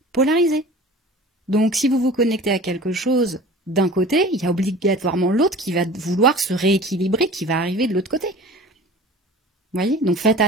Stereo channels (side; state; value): both; normal; correlation 0.41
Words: polarisé. Donc si vous vous connectez à quelque chose d'un côté, il y a obligatoirement l'autre qui va vouloir se rééquilibrer, qui va arriver de l'autre côté. Vous voyez? Donc faites